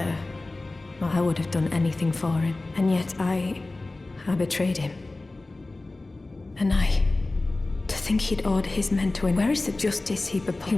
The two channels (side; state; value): right; quieter; 3.1 dB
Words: I would have done anything for him. And yet I betrayed him. And to think he'd order his men to win. Where is the justice he proposed? He